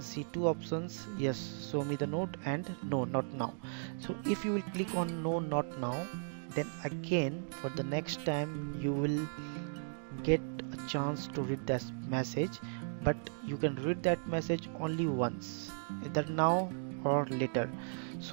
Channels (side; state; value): left; silent; digital silence